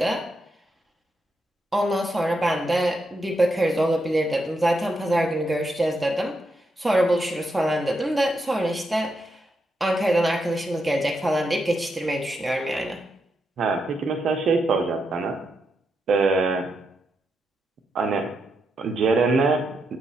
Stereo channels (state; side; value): normal; both; correlation 0.83